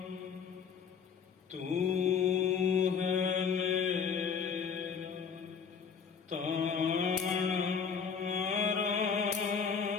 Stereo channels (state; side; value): quieter; right; 6.5 dB